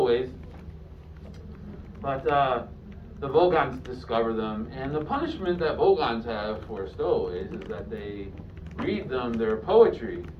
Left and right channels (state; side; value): identical; both; correlation 1.00